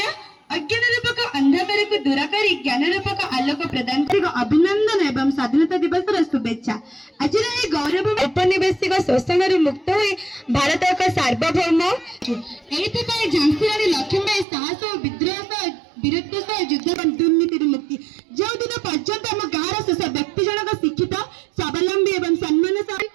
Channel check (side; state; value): left; drops out; at 14.5 s